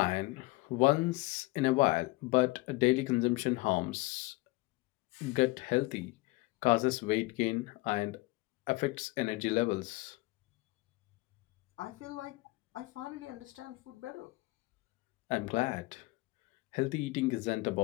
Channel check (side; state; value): right; quieter; 22.1 dB